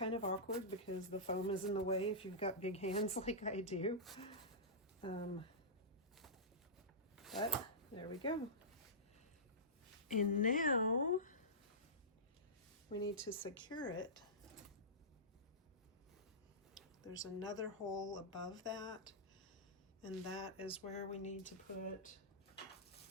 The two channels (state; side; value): normal; both; correlation -0.17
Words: of awkward because the foam is in the way if you've got big hands like I do. But there we go. And now we need to secure it. There's another hole above that, and that is where we need to put